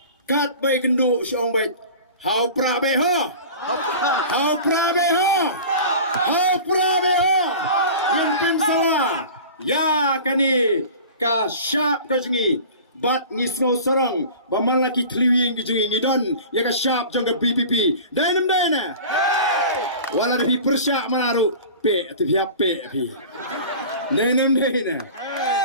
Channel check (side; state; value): both; inverted; correlation -0.38